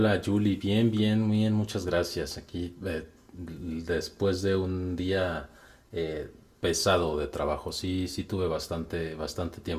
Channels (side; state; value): both; identical; correlation 1.00